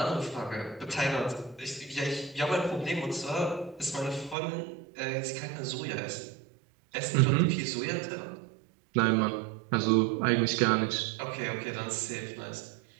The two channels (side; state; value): left; drops out; at 4.4 s